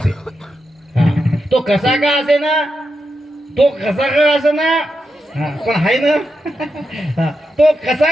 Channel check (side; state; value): both; normal; correlation 0.86